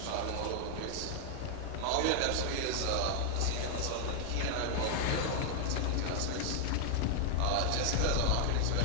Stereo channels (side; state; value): both; different; correlation 0.00